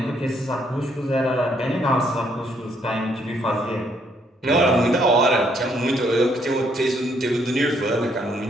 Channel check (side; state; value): both; normal; correlation 0.70